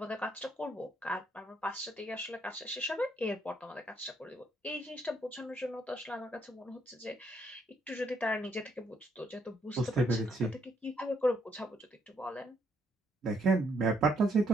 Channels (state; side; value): normal; both; correlation 0.73